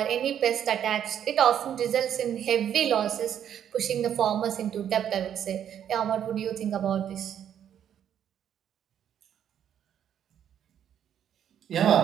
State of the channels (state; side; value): quieter; left; 9.5 dB